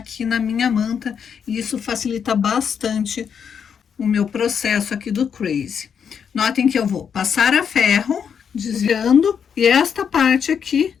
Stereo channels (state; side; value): quieter; right; 7.3 dB